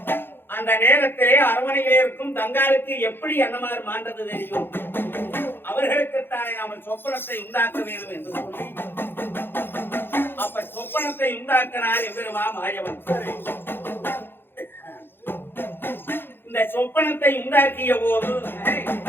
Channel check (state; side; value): late; right; 0.10 ms